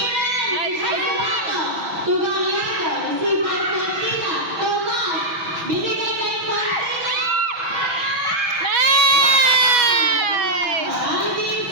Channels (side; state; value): left; late; 6.2 ms